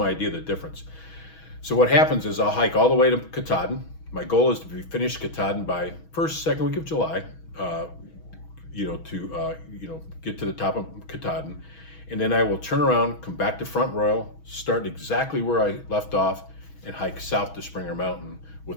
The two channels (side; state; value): right; late; 6.2 ms